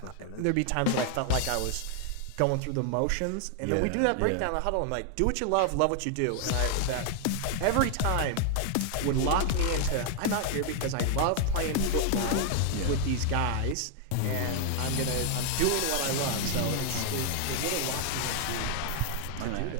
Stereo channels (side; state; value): both; different; correlation 0.00